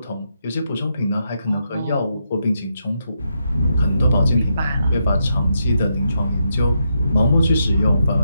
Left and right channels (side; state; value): both; inverted; correlation -0.81